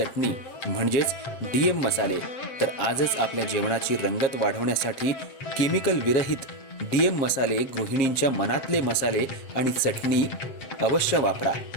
म्हणजेच डीएम मसाले. तर आजच आपल्या जेवणाची रंगत वाढवण्यासाठी केमिकल विरहित डीएम मसाले, गृहिणींच्या मनातले मसाले आणि चटणी अवश्य वापरा.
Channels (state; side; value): late; right; 7.5 ms